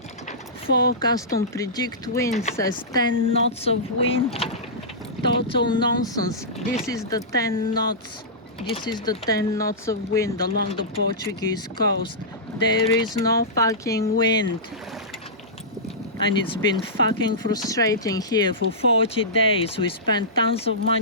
Forecast on predict wind says 10 knots of wind. Total nonsense. This is the 10 knots. This is the 10 knots of wind along the Portuguese coast. There is no fucking wind. And it's been fucking frustrating here for 40 days. We spent tons of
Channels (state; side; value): normal; both; correlation -0.17